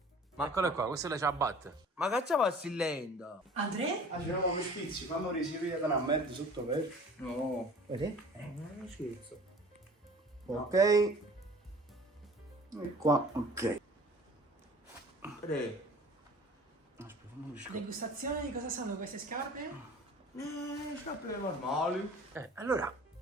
Ma eccolo qua, questa è la ciabatta. Ma che ci passi lento? André? Ah, c'eravamo mi schizzi, fammi risivire da una merda sotto per... No. Vedi? Non è uno scherzo. Ok. E qua, ok. Tre. Aspetta, fammi un scordo. Degustazione di cosa sono queste scarpe? Scarpe normali. Allora,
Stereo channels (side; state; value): both; normal; correlation 0.46